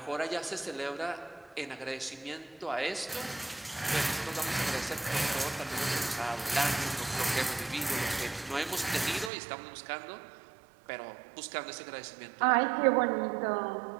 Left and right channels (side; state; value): left; drops out; at 9.3 s